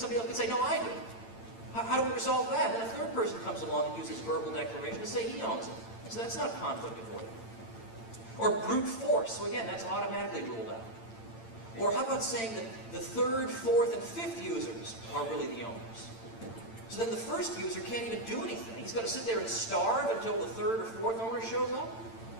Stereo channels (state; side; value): late; right; 8.9 ms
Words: else could say, no, I do. How do we resolve that? And a third person comes along and uses verbal declaration to say he owns it. So that's not conflict avoiding. Or brute force. So again, that's automatically ruled out. Or how about saying that the third, fourth, and fifth users are really the owners? So then the first user can't even do anything. He's got to sit there and starve until the third or fourth owner shows up?